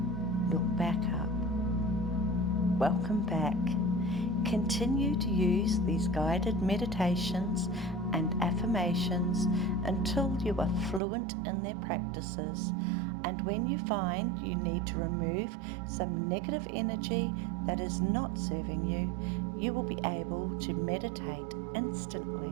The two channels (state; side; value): drops out; left; at 11.0 s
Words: Look back up. Welcome back. Continue to use these guided meditations and affirmations until you are fluent in their practices, and when you find you need to remove some negative energy that is not serving you, you will be able to meditate